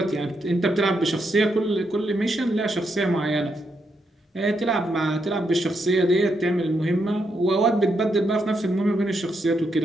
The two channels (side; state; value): both; normal; correlation 0.80